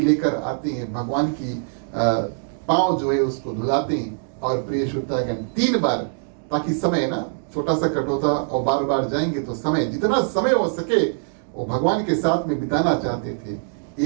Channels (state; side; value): silent; left; digital silence